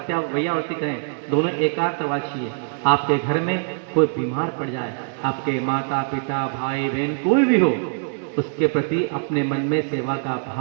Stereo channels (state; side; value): silent; left; digital silence